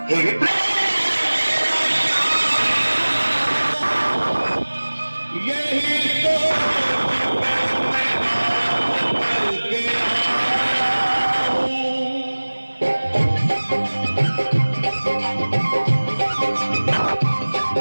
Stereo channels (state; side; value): inverted; both; correlation -1.00